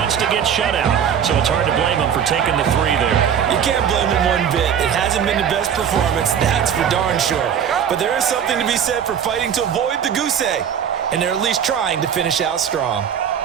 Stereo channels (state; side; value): quieter; left; 8.3 dB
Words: to get shut out, so it's hard to blame them for taking the 3 there. You can't blame them one bit. It hasn't been the best performance, that's for darn sure. But there is something to be said for fighting to avoid the goose egg, and they're at least trying to finish out strong.